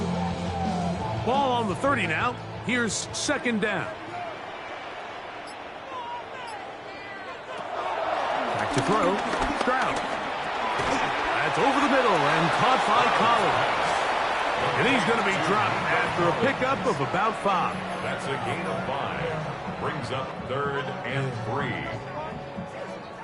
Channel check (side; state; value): both; identical; correlation 1.00